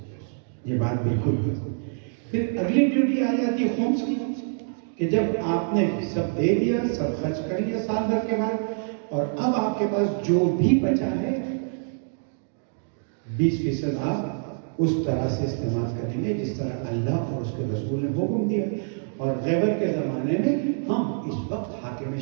یہ بات بالکل ہے۔ پھر اگلی ڈیوٹی آ جاتی ہے خمس کی، کہ جب آپ نے سب دے دیا، سب خرچ کر لیا سال بھر کے بعد، اور اب آپ کے پاس جو بھی بچا ہے 20% آپ اس طرح سے استعمال کریں گے جس طرح اللہ اور اس کے رسول نے حکم دیا. اور غیبت کے زمانے میں ہم اس وقت حاکم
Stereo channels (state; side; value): silent; left; 61 dB below the other